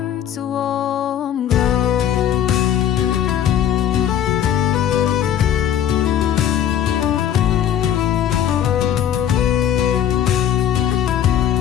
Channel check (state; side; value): quieter; right; 10.0 dB